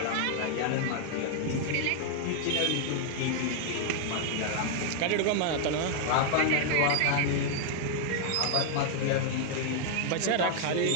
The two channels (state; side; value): different; both; correlation 0.00